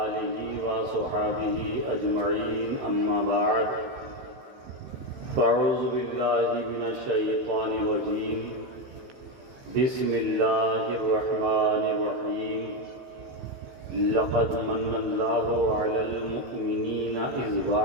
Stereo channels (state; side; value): late; left; 15 ms